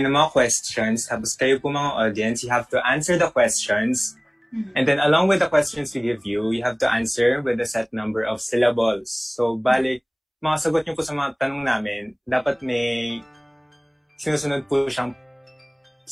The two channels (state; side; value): identical; both; correlation 1.00